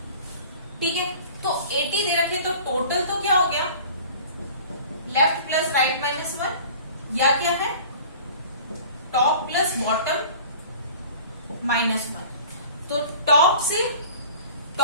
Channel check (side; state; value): both; inverted; correlation -0.44